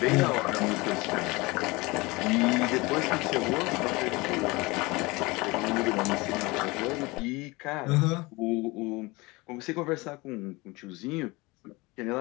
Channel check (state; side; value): quieter; right; 23.6 dB